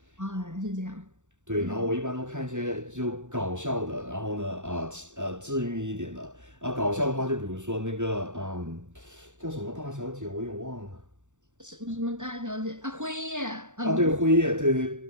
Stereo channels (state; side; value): late; left; 0.85 ms